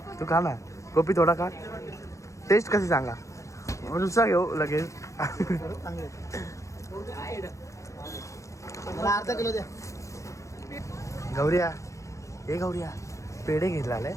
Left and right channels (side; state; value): right; late; 0.15 ms